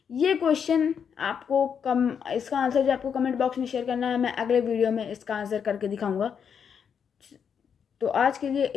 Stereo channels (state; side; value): quieter; right; 7.3 dB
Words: ये क्वेश्चन आपको इसका आंसर जो आपको कमेंट बॉक्स में शेयर करना है, मैं अगले वीडियो में इसका आंसर करके दिखाऊंगा। तो आज के लिए